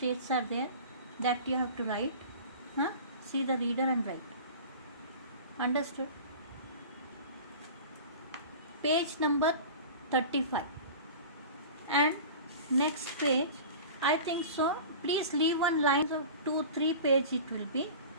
are there that you have to write. See the reader and write. Understood? Page number 35. And next page, I think so. Please leave one line of 2-3 page it will be.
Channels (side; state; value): both; inverted; correlation -0.37